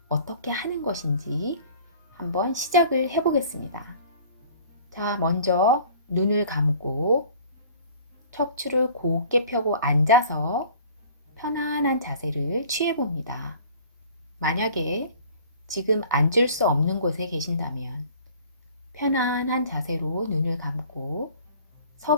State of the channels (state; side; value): inverted; both; correlation -0.49